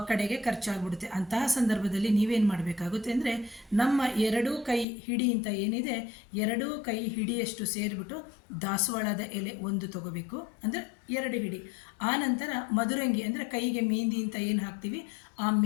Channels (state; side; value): drops out; right; at 4.9 s